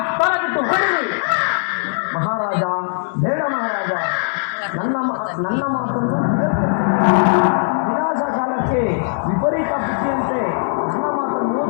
ಬಿಟ್ಟು ಹೊಡಿರಿ. ಮಹಾರಾಜ, ಬೇಡ ಮಹಾರಾಜ, ನನ್ನ ಮಾತನ್ನು ವಿನಾಶ ಕಾಲಕ್ಕೆ ವಿಪರೀತ ಬುದ್ಧಿಯಂತೆ ನನ್ನ ಮಾತನ್ನು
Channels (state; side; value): silent; right; digital silence